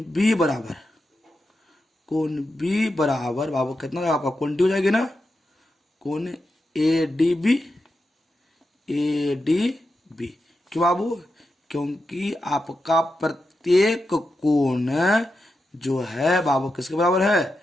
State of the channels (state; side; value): normal; both; correlation 0.88